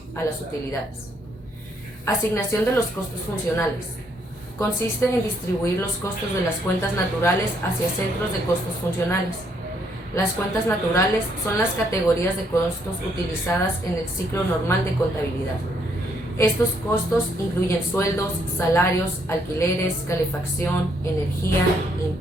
a las utilidades. Asignación de los costos funcionales. Consiste en distribuir los costos de las cuentas naturales hacia centros de costos funcionales. Las cuentas naturales son las categorías de costos utilizadas en el ciclo normal de contabilidad. Estos costos incluyen sueldos, salarios, alquileres, calefacción, energía,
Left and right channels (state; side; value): normal; both; correlation 0.71